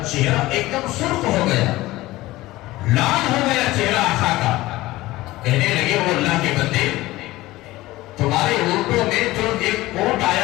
چہرہ ایک دم سرخ ہو گیا، لال ہو گیا چہرہ آقا کا، کہنے لگے وہ اللہ کے بندے، تمہارے اونٹوں میں جو ایک اونٹ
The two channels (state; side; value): quieter; right; 18.1 dB